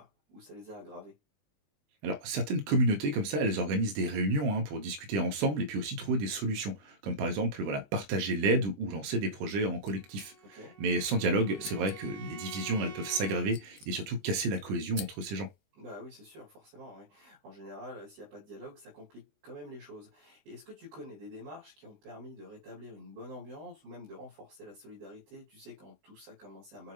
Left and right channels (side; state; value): left; late; 20 ms